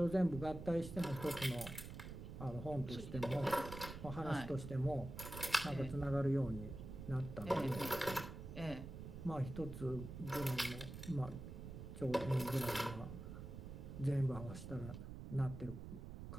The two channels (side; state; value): right; noise; rumble, 9 dB below the sound